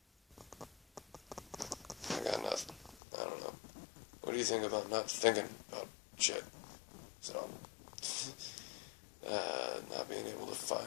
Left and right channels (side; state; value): right; drops out; at 3.0 s